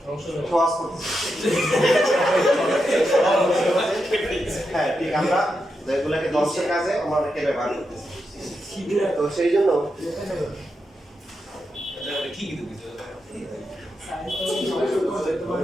সহজ করতেছে হ্যাঁ ঠিক আমরা যেগুলোকে ধ্বংসের কাজে আমরা অনেকে ব্যবহার করতেছি তো সেই জন্য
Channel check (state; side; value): normal; both; correlation 0.86